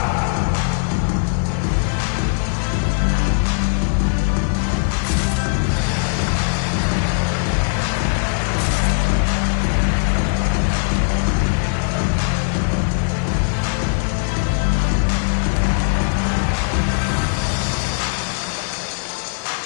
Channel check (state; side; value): silent; right; digital silence